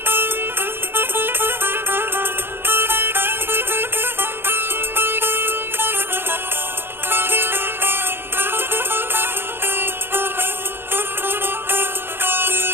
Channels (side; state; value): left; late; 0.10 ms